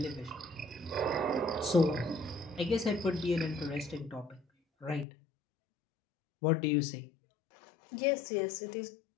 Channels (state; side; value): drops out; right; at 5.1 s